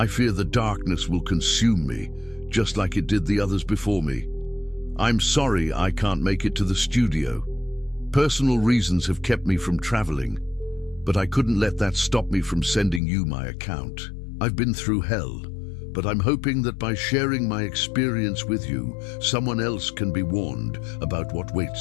fear the darkness will consume me, just like it did the others before me. I'm sorry I can't make it to the studio. Personal reasons have kept me from traveling, but I couldn't let that stop me from sending you my account. I've been through hell, but I'm hoping that by sharing my experience with you, someone else can be warned about what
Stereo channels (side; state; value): right; drops out; at 13.0 s